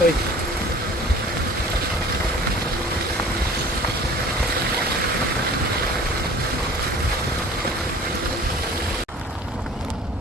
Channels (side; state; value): both; normal; correlation 0.46